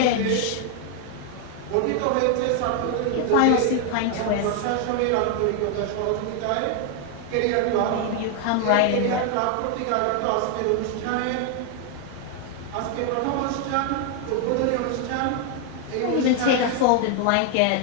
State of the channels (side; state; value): both; different; correlation 0.00